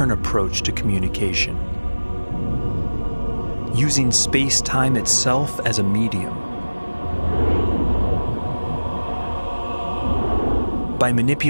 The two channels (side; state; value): both; inverted; correlation -1.00